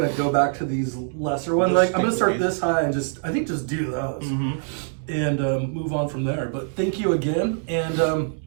go back to these lesser ones. Like, I'm gonna start this high and just do those and move on from there. But thank you again, and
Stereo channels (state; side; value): silent; left; digital silence